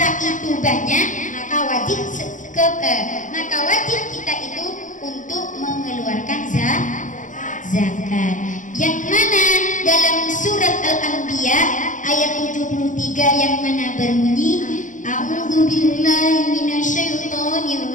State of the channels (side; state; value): right; late; 0.37 ms